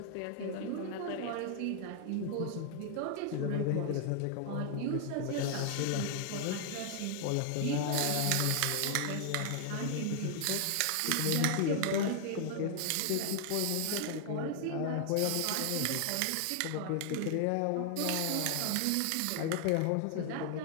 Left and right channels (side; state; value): both; different; correlation 0.00